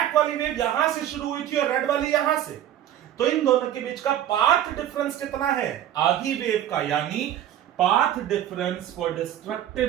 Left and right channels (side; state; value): left; quieter; 11.5 dB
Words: वाली वेव यहां से शुरू हुई थी और रेड वाली यहां से, तो इन दोनों के बीच का पाथ डिफरेंस कितना है? आधी वेव का, यानी path difference for